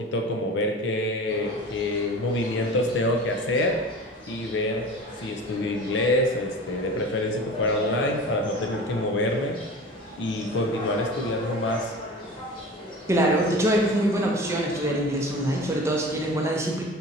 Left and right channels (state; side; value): normal; both; correlation 0.36